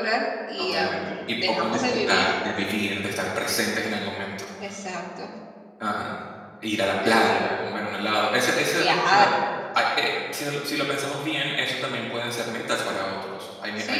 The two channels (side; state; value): both; identical; correlation 1.00